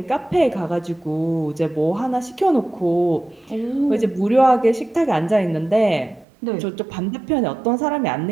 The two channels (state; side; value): drops out; left; at 6.2 s